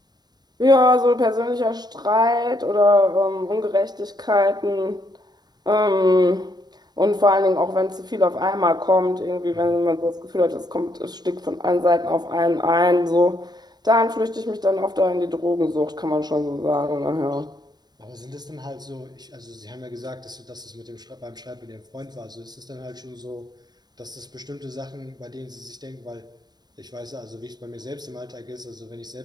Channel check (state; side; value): late; left; 0.20 ms